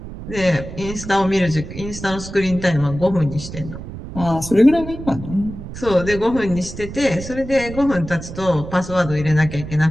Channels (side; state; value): right; noise; rumble, 11 dB below the sound